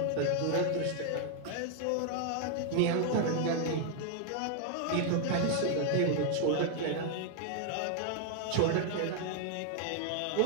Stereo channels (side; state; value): both; different; correlation 0.00